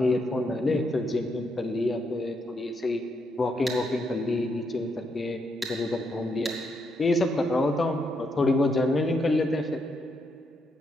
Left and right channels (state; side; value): normal; both; correlation 0.79